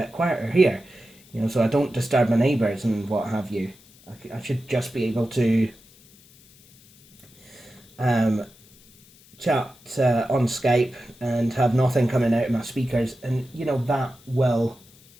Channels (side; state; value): left; noise; hiss, 26 dB below the sound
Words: quieter here, you know, so I don't disturb my neighbours and what have you. I should just be able to chat on Skype and have nothing coming out of my speakers, and you know,